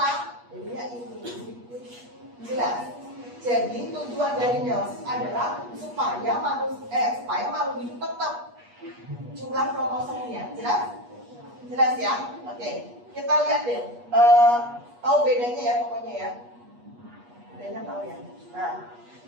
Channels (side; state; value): left; late; 8.3 ms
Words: Jadinya ini. Jelas. Jadi tujuan dari meiosis adalah supaya makhluk hidup tetap jumlah kromosomnya. Jelas? Jelas ya? Oke. Kita lihat deh. Tahu bedanya ya pokoknya ya. Bedanya tahu ya. Nah,